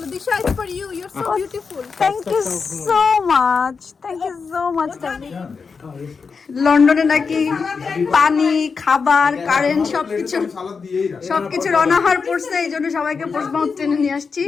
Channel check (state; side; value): quieter; right; 5.2 dB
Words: Disha, it's for you. You're so beautiful. Thank you so much, thank you so much দাবিদ। লন্ডনে নাকি পানি, খাবার, কারেন্ট সবকিছুর অনাহার পড়ছে, এই জন্য সবাইকে পোস্টমাউথ ট্রেনে নিয়ে আসছি।